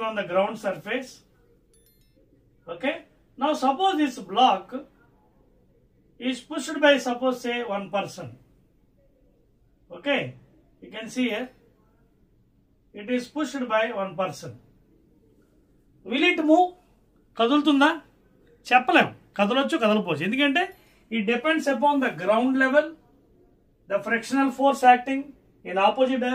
on the ground surface. Okay. Now suppose this block is pushed by, suppose say, one person. Okay. You can see here. It is pushed by one person. Will it move? కదులుతుందా? చెప్పలేం. కదలొచ్చు, కదలపోవచ్చు. ఎందుకంటే it depends upon the ground level, the frictional force acting in opposite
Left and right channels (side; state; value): both; identical; correlation 1.00